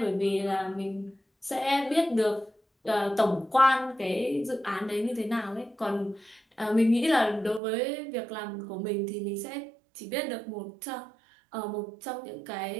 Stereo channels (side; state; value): left; drops out; at 7.6 s